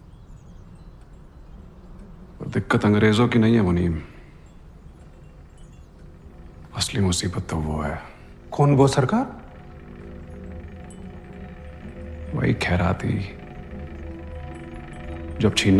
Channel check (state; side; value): identical; both; correlation 1.00